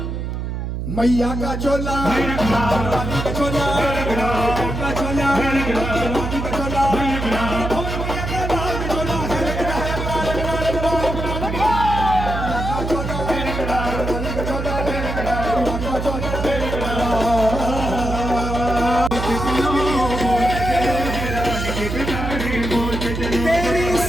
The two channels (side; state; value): right; noise; hum, 4 dB below the sound